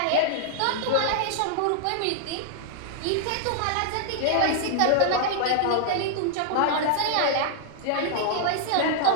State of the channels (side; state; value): both; different; correlation -0.01